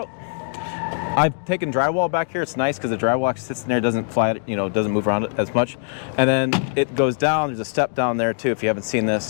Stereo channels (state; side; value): silent; right; digital silence